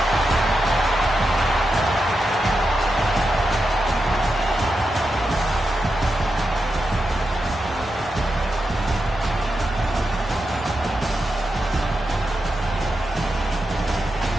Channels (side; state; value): both; normal; correlation 0.88